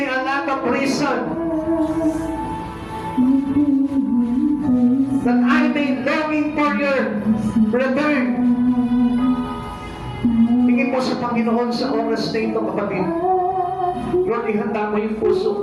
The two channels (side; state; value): both; identical; correlation 1.00